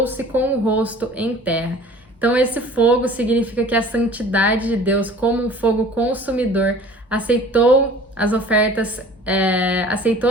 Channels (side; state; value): both; normal; correlation 0.46